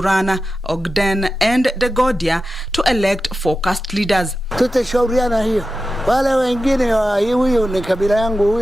Ogden and Dagodia, to elect focused leaders. Tutashauriana hiyo. Wale wengine huyu ni kabila yangu,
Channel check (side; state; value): both; normal; correlation 0.93